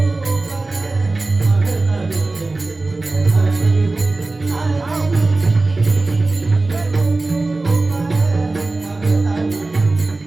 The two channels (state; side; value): quieter; left; 3.3 dB